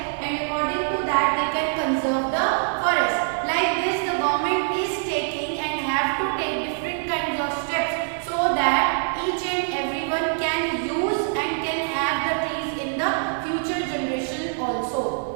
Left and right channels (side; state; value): left; silent; digital silence